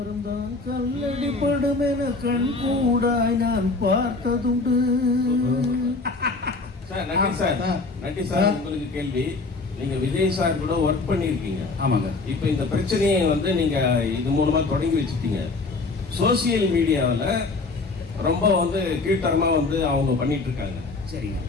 கல்லடி படும் என கண் கூடாய் நான் பார்த்ததுண்டு. நட்டி சார் உங்களுக்கு கேள்வி. நீங்க விஜய் சார் கூட ஒர்க் பண்ணிருக்கீங்க. ஆமாங்க. இப்ப இந்த பிரச்சனையை வந்து நீங்க இது மூலமா தொடங்கி வச்சுட்டீங்க. சோசியல் மீடியாவில் ரொம்ப வந்து கீழ்த்தரமா வந்து அவங்க பண்ணிட்டு இருக்காங்க. சரிங்க.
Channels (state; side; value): quieter; right; 3.7 dB